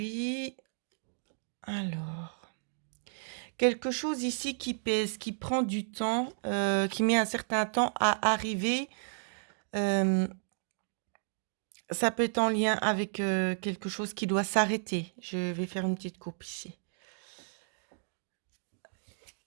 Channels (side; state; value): left; silent; digital silence